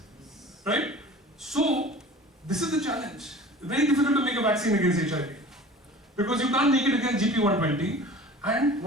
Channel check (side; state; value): both; normal; correlation 0.42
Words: right? So this is the challenge. It's very difficult to make a vaccine against HIV because you can't make it against GP120. And